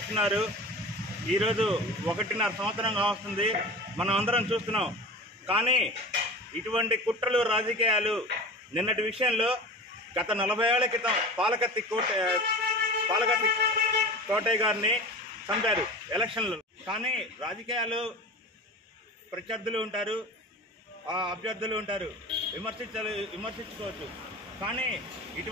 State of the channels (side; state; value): both; normal; correlation 0.34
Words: ఈరోజు 1.5 సంవత్సరంగా వస్తుంది, మనం అందరం చూస్తున్నాం. కానీ ఇటువంటి కుట్రలు రాజకీయాలు నిన్నటి విషయంలో గత 40 ఏళ్ల క్రితం పాలకత్తి కోటయ్య గారిని చంపారు ఎలక్షన్లు. కానీ రాజకీయాలు ప్రత్యర్థులు ఉంటారు, అభ్యర్థులు ఉంటారు, విమర్శించుకోవచ్చు. కానీ